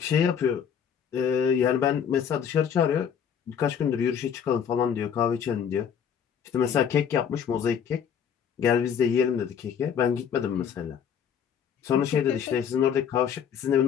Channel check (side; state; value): right; quieter; 7.9 dB